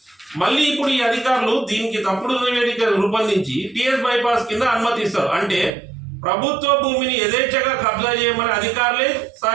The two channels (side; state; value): left; drops out; at 5.7 s